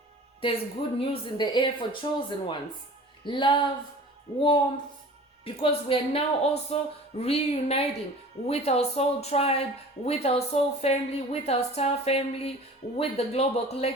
There's good news in the air for chosen ones. Love, warmth, because we are now also reuniting with our soul tribe, with our soul family, with our star family, with the global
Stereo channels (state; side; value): normal; both; correlation 0.42